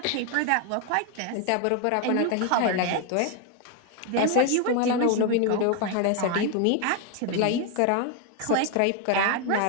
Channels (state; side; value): different; both; correlation 0.01